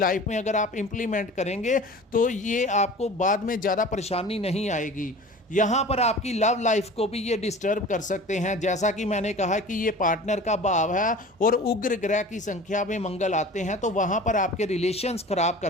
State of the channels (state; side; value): normal; both; correlation 0.40